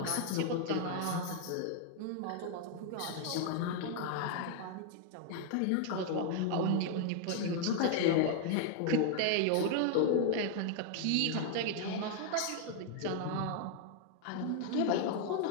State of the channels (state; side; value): different; both; correlation 0.00